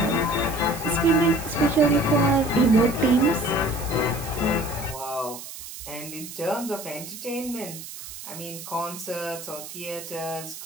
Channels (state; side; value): noise; right; hiss, 12 dB below the sound